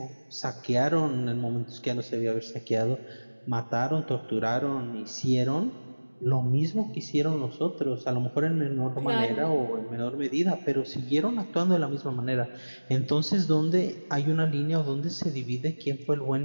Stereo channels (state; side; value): inverted; both; correlation -1.00